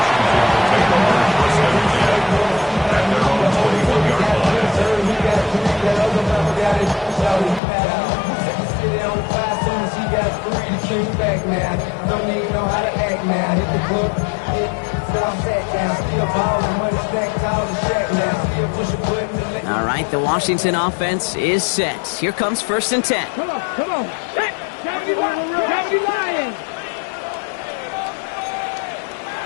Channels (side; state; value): right; drops out; at 7.6 s